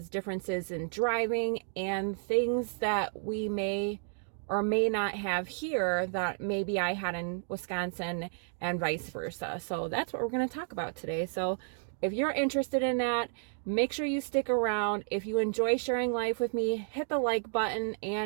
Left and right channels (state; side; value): silent; left; digital silence